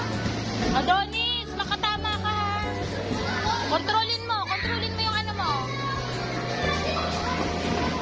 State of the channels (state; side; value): identical; both; correlation 1.00